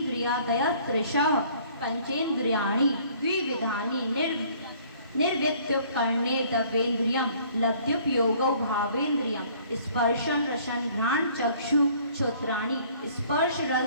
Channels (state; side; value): inverted; both; correlation -0.57